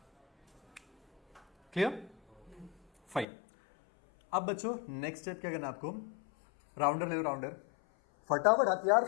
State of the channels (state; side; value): drops out; right; at 3.2 s